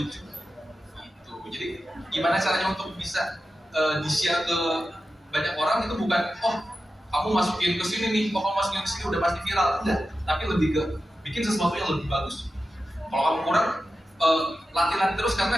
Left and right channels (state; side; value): normal; both; correlation 0.92